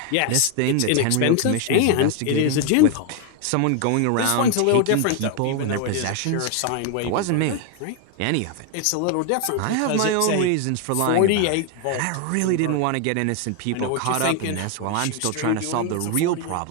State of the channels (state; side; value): different; both; correlation 0.01